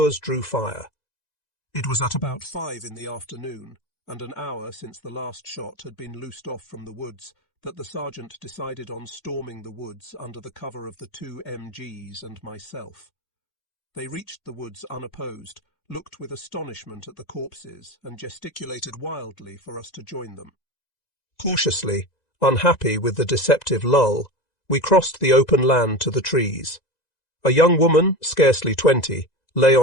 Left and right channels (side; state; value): right; late; 1.9 ms